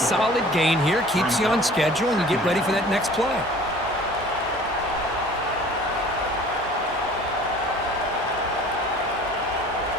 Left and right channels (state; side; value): noise; right; hum, 21 dB below the sound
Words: gain here. Keeps you on schedule, and you get ready for that next play.